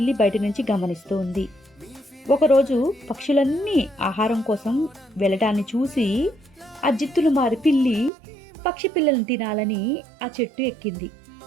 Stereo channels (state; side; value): drops out; left; at 8.1 s